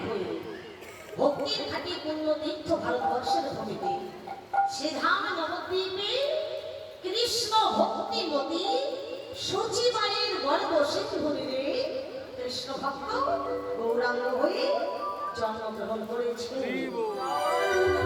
হয়ে ভক্তির ঘাটি পূর্ণ তীর্থ ভারতবর্ষের ভূমিতে সে ধাম নবদ্বীপে কৃষ্ণ ভক্তিমতী সচিবায়ের গর্ব সেতু ভূমিতে কৃষ্ণ ভক্ত গৌরাঙ্গ হয়ে জন্মগ্রহণ করেছে।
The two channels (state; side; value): identical; both; correlation 1.00